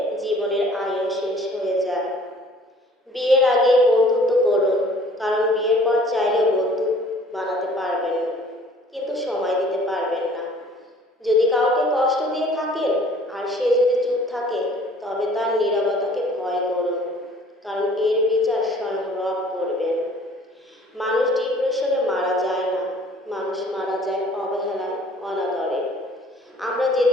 জীবনের আয়ু শেষ হয়ে যায়। বিয়ের আগে বন্ধুত্ব করুন, কারণ বিয়ের পর চাইলেও বন্ধু বানাতে পারবেন, কিন্তু সময় দিতে পারবেন না। যদি কাউকে কষ্ট দিয়ে থাকেন আর সে যদি চুপ থাকে, তবে তার নীরবতাকে ভয় করুন, কারণ এর বিচার স্বয়ং রব করবেন। মানুষ ডিপ্রেশনে মারা যায় না, মানুষ মারা যায় অবহেলায়, অনাদরে। আমরা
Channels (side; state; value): both; normal; correlation 0.53